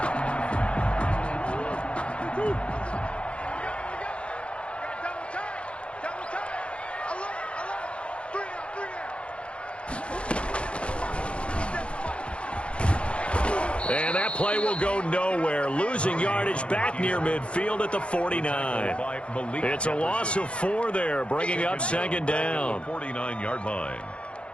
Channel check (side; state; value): right; late; 0.060 ms